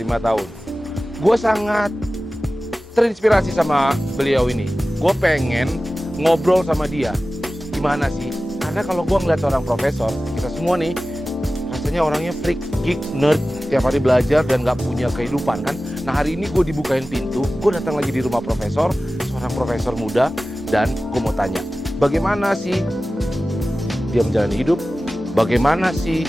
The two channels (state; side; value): normal; both; correlation 0.96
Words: tahun. Gue sangat terinspirasi sama beliau ini. Gue pengen ngobrol sama dia. Gimana sih? Karena kalau gue ngeliat seorang profesor, kita semua nih, rasanya orangnya freak, geek, nerd, tiap hari belajar dan gak punya kehidupan kan. Nah hari ini gue dibukain pintu, gue datang lagi di rumah profesor, seorang profesor muda, dan gue mau tanya, bagaimana sih dia menjalani hidup, bagaimana sih